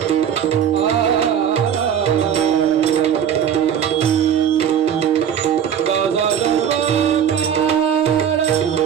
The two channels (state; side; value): quieter; left; 8.7 dB